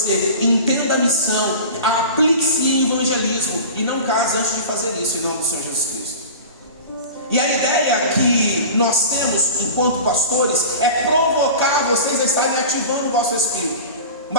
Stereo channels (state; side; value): inverted; both; correlation -0.36